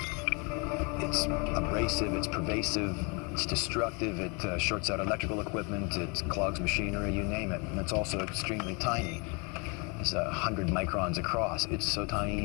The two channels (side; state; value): right; quieter; 31.5 dB